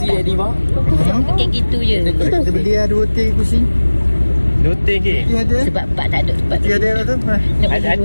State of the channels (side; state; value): both; inverted; correlation -1.00